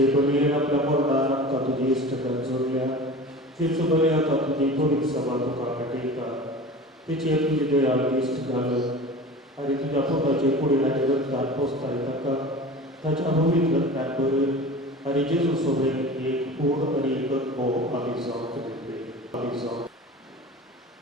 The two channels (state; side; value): normal; both; correlation 0.36